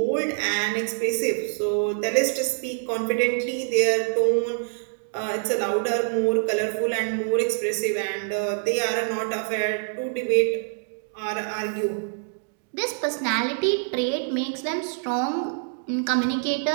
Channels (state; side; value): silent; left; digital silence